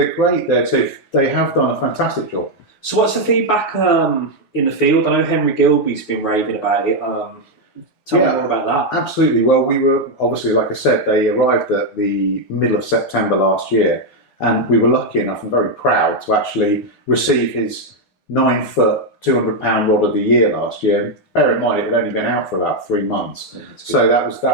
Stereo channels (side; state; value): right; late; 9.5 ms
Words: great. They have done a fantastic job. So what's the feedback in the field? I know Henry Gilby's been raving about it. Tell me more about that. Absolutely. Well, we were obviously, like I said, they arrived at the middle of September last year, and we were lucky enough and very proud to actually receive his 9-foot, 200-pound rod of the year last year. Bear in mind, it had only been out for about 3 months, so that